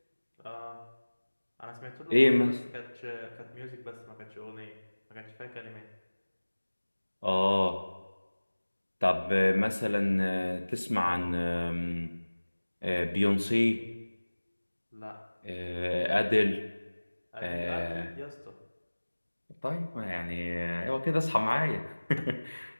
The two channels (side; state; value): both; inverted; correlation -1.00